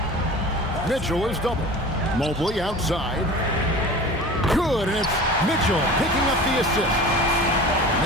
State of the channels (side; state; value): both; normal; correlation 0.37